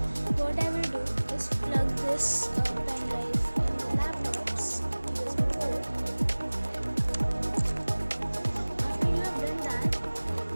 what I will do is plug this pendrive in the laptop's USB port. After you have done that,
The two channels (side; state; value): both; inverted; correlation -1.00